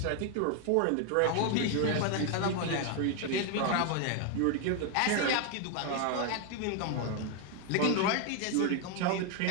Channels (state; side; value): different; both; correlation 0.01